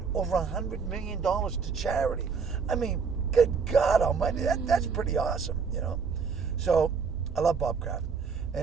over $100 million to charity. I mean, good God almighty, that's pretty awesome, you know. So I love Bob Kraft.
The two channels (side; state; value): left; quieter; 5.6 dB